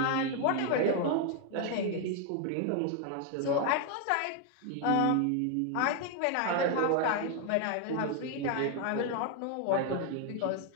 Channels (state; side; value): different; both; correlation 0.01